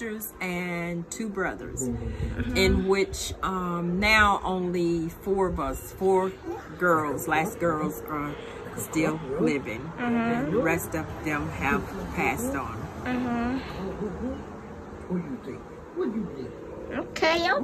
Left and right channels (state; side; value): identical; both; correlation 1.00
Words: and 2 brothers, in which now only 4 of us, 4 girls, last girls, are still living, and the rest of them have passed on. Okay.